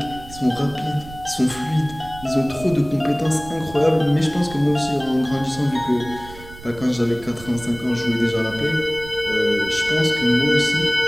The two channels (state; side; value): noise; right; rumble, 17 dB below the sound